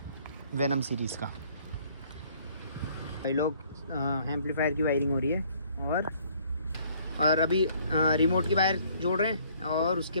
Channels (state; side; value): inverted; both; correlation -0.60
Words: वेनम सीरीज़ का। भाई लोग एम्पलीफायर की वायरिंग हो रही है और अभी रिमोट की वायर जोड़ रहे हैं और उसके